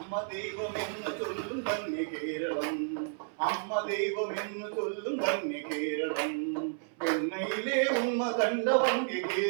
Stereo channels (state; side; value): silent; left; 57 dB below the other